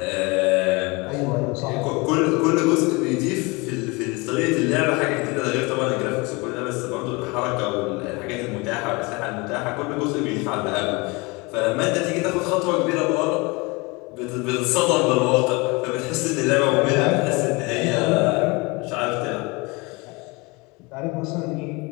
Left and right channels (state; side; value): quieter; right; 26.3 dB